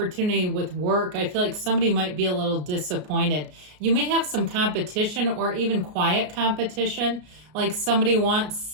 with work, I feel like somebody might be a little disappointed. You may have some competition or even quiet competition. Like somebody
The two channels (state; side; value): late; left; 33 ms